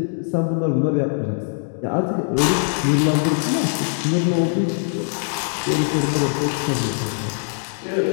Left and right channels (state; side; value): silent; right; digital silence